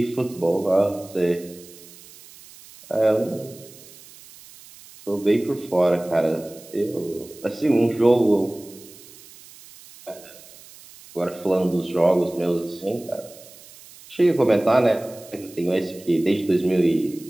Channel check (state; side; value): noise; right; hiss, 21 dB below the sound